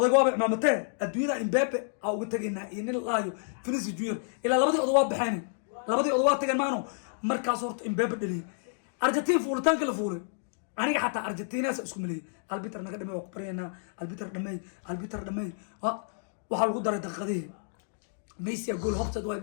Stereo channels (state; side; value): silent; right; digital silence